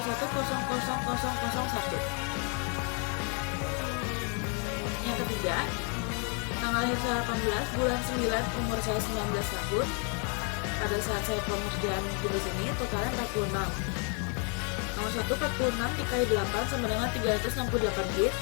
Yang ketiga, tanggal lahir saya 18, bulan 9, umur saya 19 tahun. Pada saat saya pengerjaan tugas ini, totalnya 46. Nomor 1, 46 dikali 8 sama dengan 368 bit.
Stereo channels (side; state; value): right; quieter; 38.2 dB